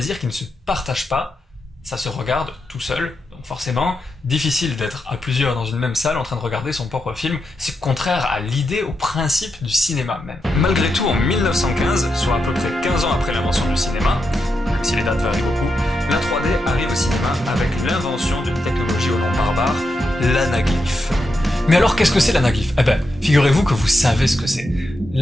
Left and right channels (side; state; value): both; normal; correlation 0.86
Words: qui ne se partage pas. Ça se regarde tout seul, donc forcément, difficile d'être à plusieurs dans une même salle en train de regarder son propre film, c'est contraire à l'idée, au principe du cinéma même. Malgré tout, en 1915, soit à peu près 15 ans après l'invention du cinéma, même si les dates varient beaucoup, la 3D arrive au cinéma avec l'invention d'une technologie au nom barbare, l'anaglyphe. Mais alors qu'est-ce que c'est l'anaglyphe? Eh ben, figurez-vous que vous savez ce que c'est.